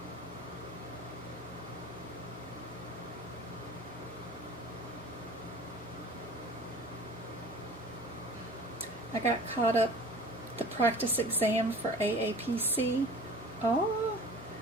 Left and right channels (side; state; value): both; normal; correlation 0.43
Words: I got caught up the practice exam for AAPC. Oh,